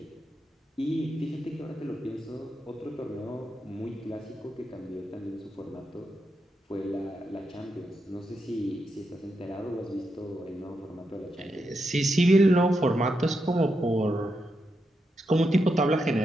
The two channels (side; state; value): both; normal; correlation 0.84